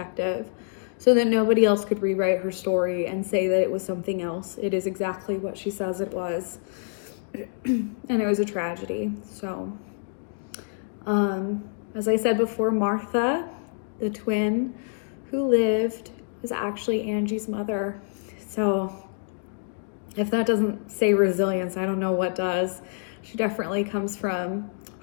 so that nobody else could rewrite her story and say that it was something else. It is exactly what she says it was. And it was a tragedy. So, as I said before, Martha, the twin who lived, was actually Angie's mother. So if that doesn't say resilience, I don't know what does. She definitely comes from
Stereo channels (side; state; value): right; silent; digital silence